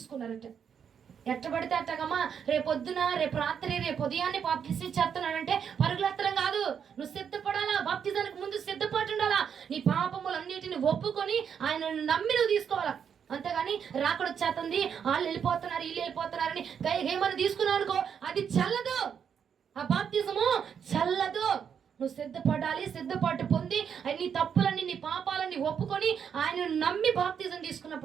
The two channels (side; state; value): left; quieter; 7.6 dB